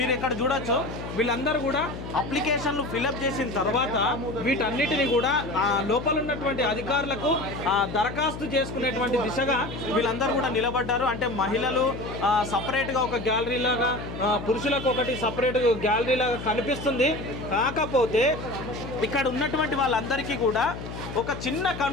ఇక్కడ చూడొచ్చు. వీళ్ళందరూ కూడా అప్లికేషన్లు ఫిలప్ చేసిన తర్వాత వీటన్నిటిని కూడా లోపల ఉన్నటువంటి అధికారులకు దరఖాస్తు చేసుకునేటువంటి దిశగా వీళ్ళందరూ కూడా నిలబడ్డారు. అంటే మహిళలు సపరేట్గా ఒక గ్యాలరీ లాగా, పురుషులకు ఒకటి సపరేట్ గ్యాలరీ లాగా కనిపిస్తుంది. కాకపోతే ఇక్కడ ఉన్నటువంటి వాళ్ళందరికీ కూడా ఒక చిన్న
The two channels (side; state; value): left; noise; hum, 9 dB below the sound